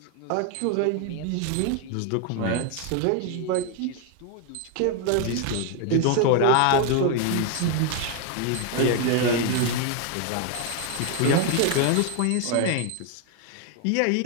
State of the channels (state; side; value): different; both; correlation 0.01